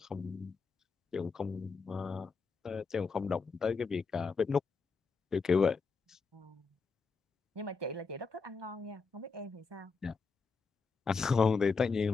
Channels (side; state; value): right; quieter; 4.7 dB